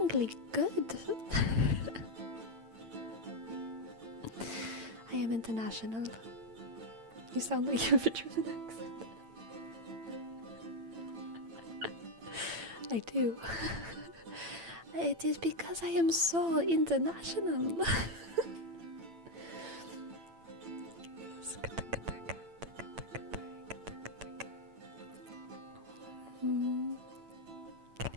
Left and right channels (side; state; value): left; late; 8.9 ms